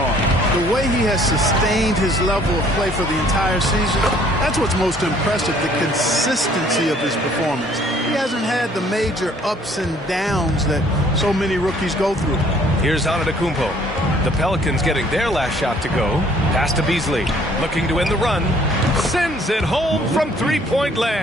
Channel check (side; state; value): both; normal; correlation 0.59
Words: The way he has sustained his level of play for the entire season, that's what's most impressive, the consistency of his performance. He hasn't had the major ups and downs that so many rookies go through. Here's Antetokounmpo. The Pelicans getting their last shot to go. Pass to Beasley. Looking to win the run. Sends it home from three-point